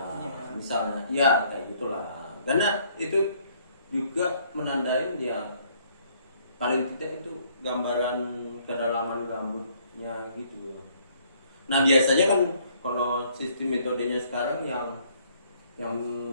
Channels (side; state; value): both; inverted; correlation -0.64